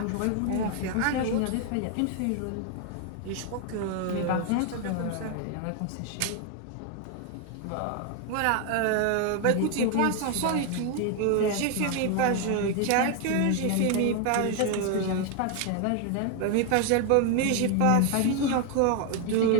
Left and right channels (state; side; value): different; both; correlation 0.01